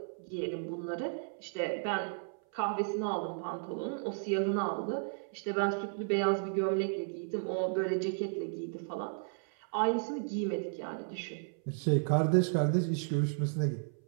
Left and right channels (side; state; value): left; silent; 55 dB below the other